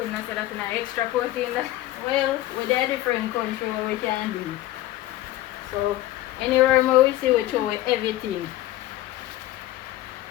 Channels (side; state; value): right; quieter; 15.5 dB